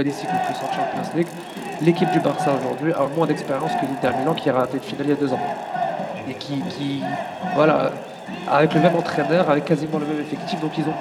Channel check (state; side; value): identical; both; correlation 1.00